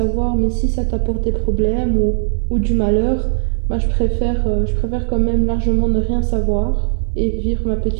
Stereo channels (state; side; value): silent; left; digital silence